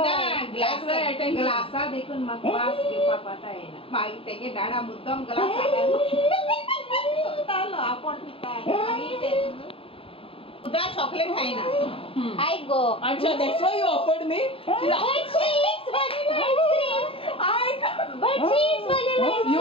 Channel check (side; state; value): right; late; 0.27 ms